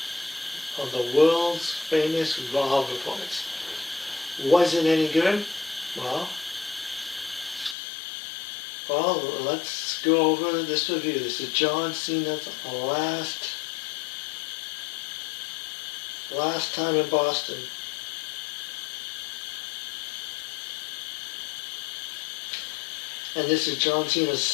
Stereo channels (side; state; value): right; drops out; at 7.8 s